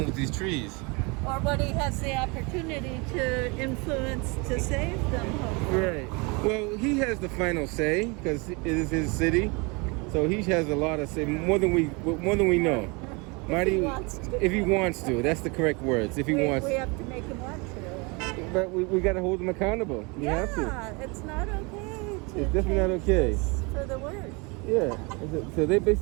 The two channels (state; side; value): quieter; left; 29.1 dB